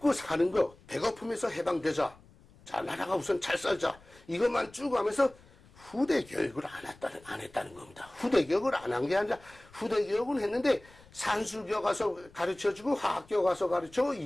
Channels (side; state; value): left; noise; rumble, 25 dB below the sound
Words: 사는 거 배고픔에서 해방되자. 자, 나라가 우선 잘 살자. 이것만 쭉 하면서 후대 교육을 안 했다는 겁니다. 후대 교육을 안 한 게 아니라 후대 교육은 했는데 산수교 가서 가르쳐주고 화학교 가서 가르쳐